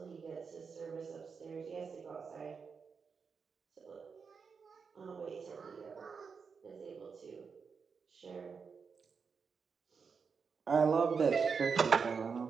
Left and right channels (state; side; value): quieter; left; 5.6 dB